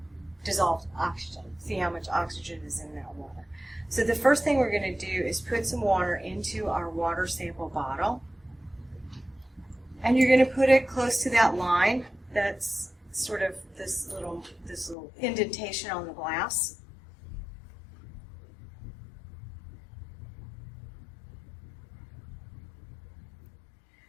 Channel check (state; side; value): drops out; right; at 15.0 s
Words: dissolved oxygen. See how much oxygen is in that water. So the first thing we're going to do is put some water into our water sample bottle. And you're going to put it close to that line that's sort of this little indentation on the glass.